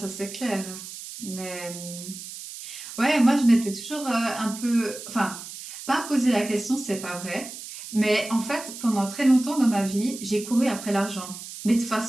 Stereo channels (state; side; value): noise; right; hiss, 12 dB below the sound